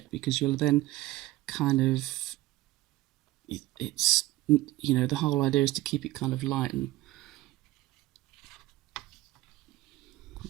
because you'll then kind of, it's, you know, the whole idea is to keep it kind of light and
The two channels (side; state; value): left; quieter; 17.0 dB